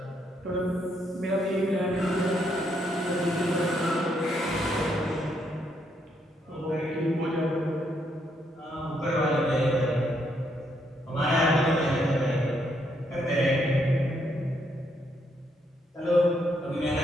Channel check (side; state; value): both; normal; correlation 0.75